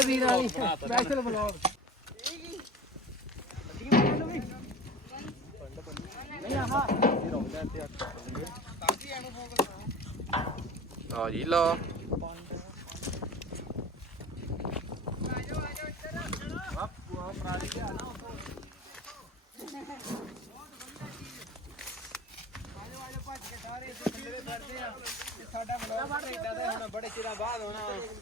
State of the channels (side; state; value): both; normal; correlation 0.37